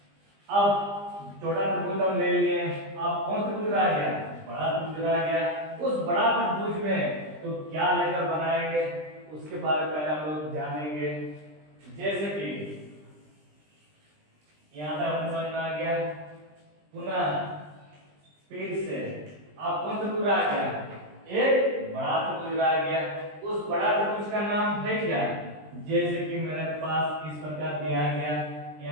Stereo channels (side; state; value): left; late; 20 ms